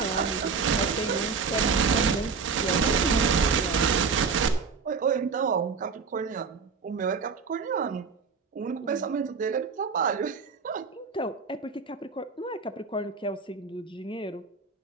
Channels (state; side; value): quieter; left; 5.3 dB